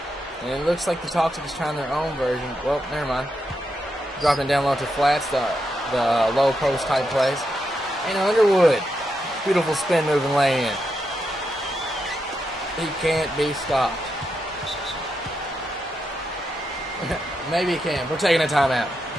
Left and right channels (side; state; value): both; normal; correlation 0.84